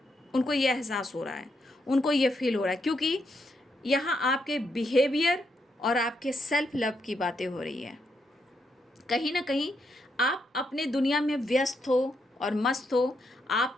उनको ये एहसास हो रहा है, उनको ये फील हो रहा है, क्योंकि यहाँ आपके बिहेवियर और आपके सेल्फ लव की बातें हो रही है। कहीं ना कहीं आप अपने दुनिया में व्यस्त हो और मस्त हो।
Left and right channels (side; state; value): both; normal; correlation 0.79